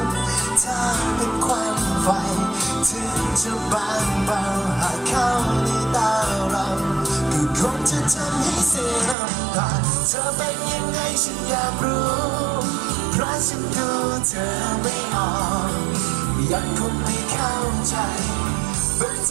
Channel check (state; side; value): drops out; left; at 9.2 s